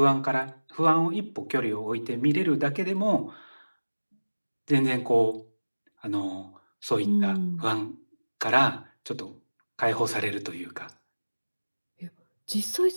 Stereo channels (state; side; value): inverted; both; correlation -1.00